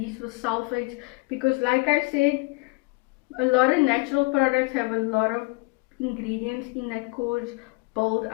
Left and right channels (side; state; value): right; quieter; 26.6 dB